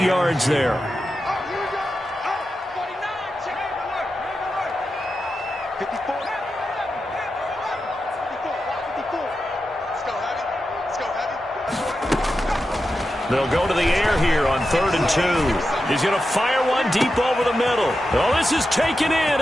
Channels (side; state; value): both; normal; correlation 0.90